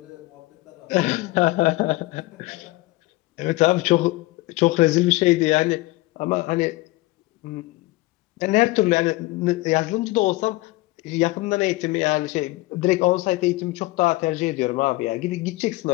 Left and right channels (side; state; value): right; quieter; 20.3 dB